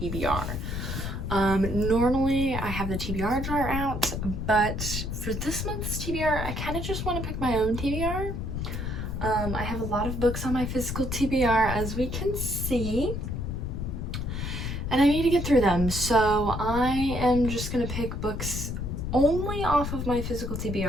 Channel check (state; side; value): noise; left; rumble, 4 dB below the sound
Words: TBR. Normally I have the TBR jar out, but for this month's TBR I kind of just want to pick my own TBR. I have a lot of books on my physical TBR, as we can see, and I need to get through them, so I am just going to pick books only off of my physical